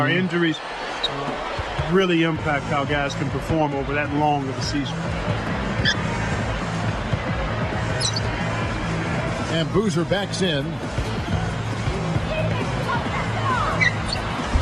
Injuries really impact how guys can perform over that long of a season. And Boozer backs in.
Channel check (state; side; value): identical; both; correlation 1.00